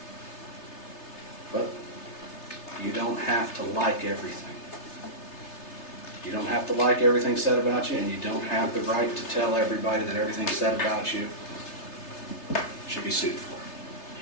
But you don't have to like everything. You don't have to like everything said about you, and you don't have the right to tell everybody that everything said about you should be sued for,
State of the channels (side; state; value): right; late; 3.3 ms